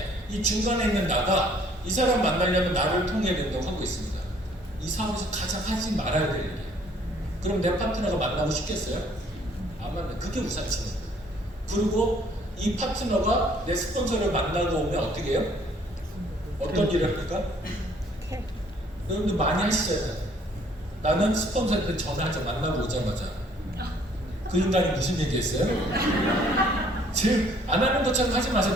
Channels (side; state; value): both; normal; correlation 0.60